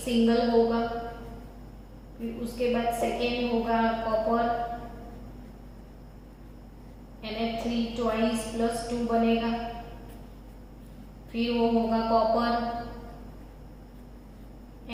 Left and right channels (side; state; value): both; identical; correlation 1.00